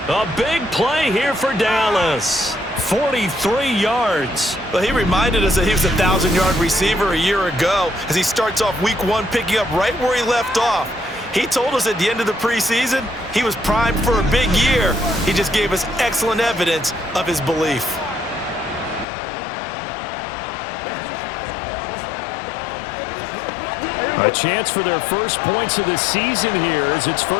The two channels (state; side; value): drops out; right; at 19.1 s